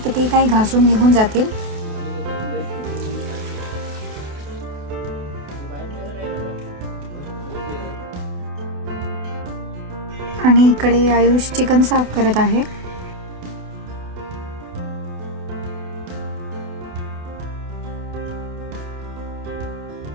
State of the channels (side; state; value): left; late; 28 ms